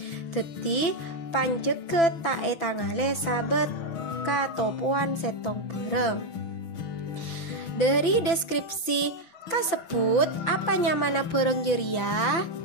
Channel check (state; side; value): late; right; 5.9 ms